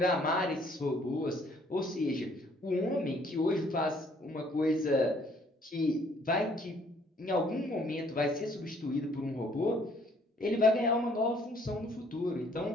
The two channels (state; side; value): normal; both; correlation 0.62